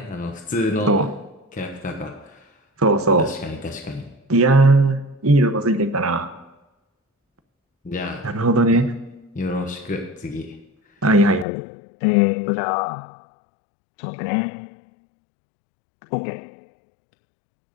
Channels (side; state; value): right; drops out; at 11.5 s